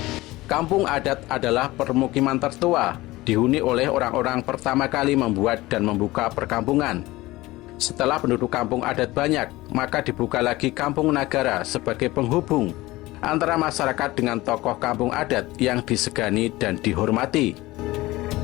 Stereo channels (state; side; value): quieter; right; 19.1 dB